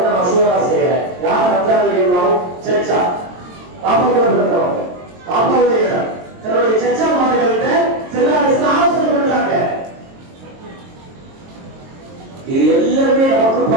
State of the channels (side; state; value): left; late; 22 ms